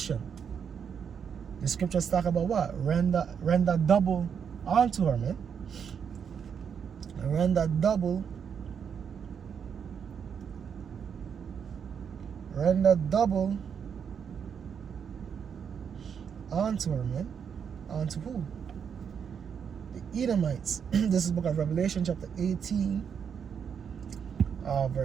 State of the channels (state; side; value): quieter; left; 7.3 dB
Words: The scriptures talk about what? Render double onto her, man. Render double onto her, man. Onto who? The Edomites. This is the book of Revelation, chapter 18,